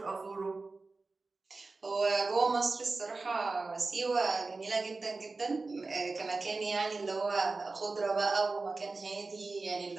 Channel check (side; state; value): left; quieter; 3.7 dB